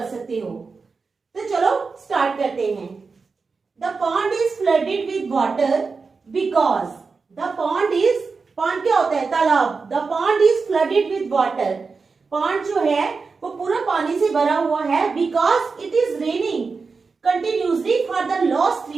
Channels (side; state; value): left; quieter; 4.6 dB